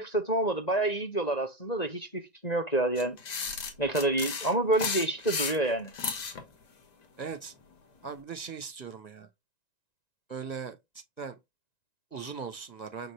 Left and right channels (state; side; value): late; right; 1.9 ms